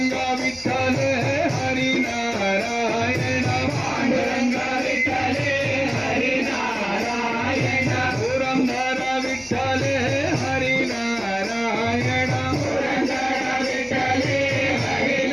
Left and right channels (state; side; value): noise; right; hum, 24 dB below the sound